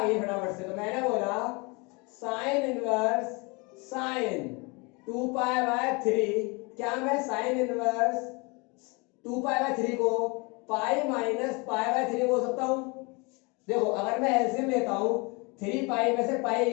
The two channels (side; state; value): right; quieter; 28.9 dB